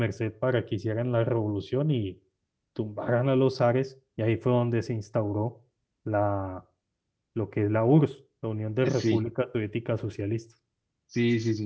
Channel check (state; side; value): identical; both; correlation 1.00